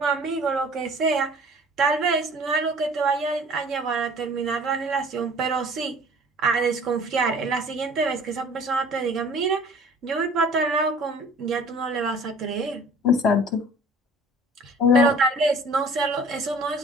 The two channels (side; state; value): both; normal; correlation 0.49